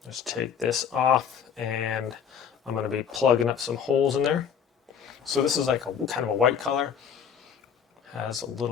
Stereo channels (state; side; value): quieter; right; 7.8 dB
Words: just take this off, and I'm going to be plugging up some holes in there. So this is like a kind of a white color. Has a